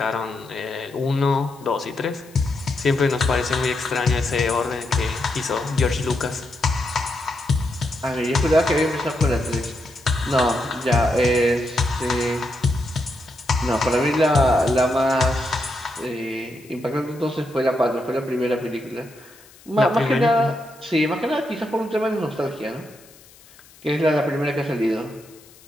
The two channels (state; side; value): noise; left; hiss, 25 dB below the sound